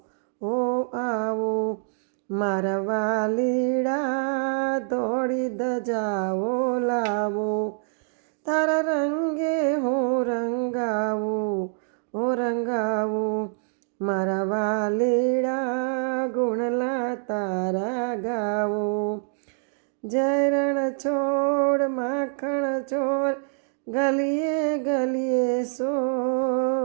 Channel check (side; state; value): left; silent; 61 dB below the other